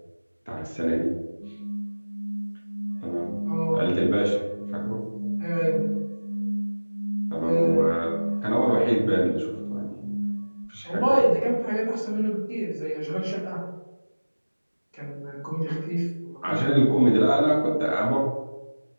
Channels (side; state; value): both; inverted; correlation -1.00